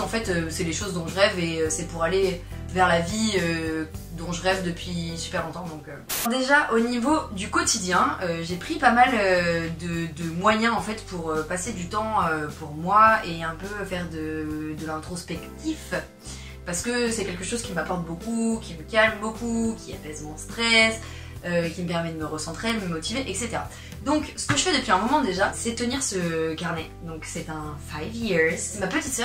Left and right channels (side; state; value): both; identical; correlation 1.00